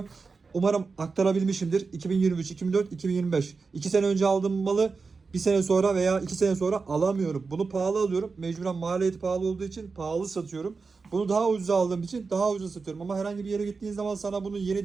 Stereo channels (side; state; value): left; quieter; 4.6 dB